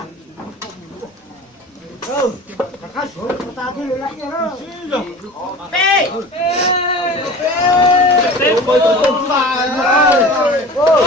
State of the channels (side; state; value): both; normal; correlation 0.38